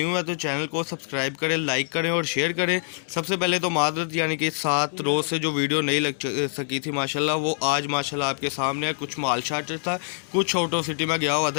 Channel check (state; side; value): silent; right; 62 dB below the other